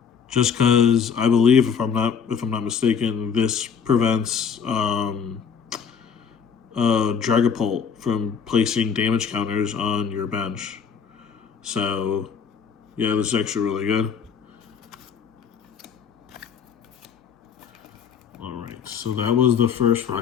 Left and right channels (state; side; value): quieter; right; 6.7 dB